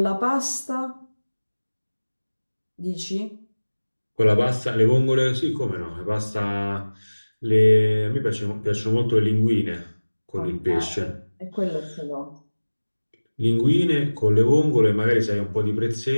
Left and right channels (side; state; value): both; inverted; correlation -1.00